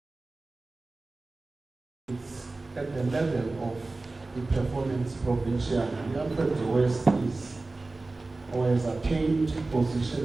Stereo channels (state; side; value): quieter; left; 3.3 dB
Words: At the level of the performance provincial, the Alfred West is or has attained